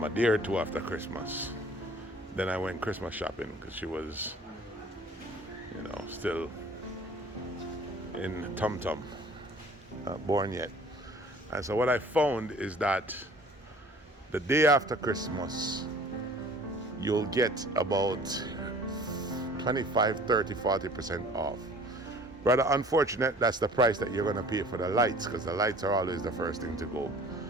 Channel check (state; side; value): normal; both; correlation 0.50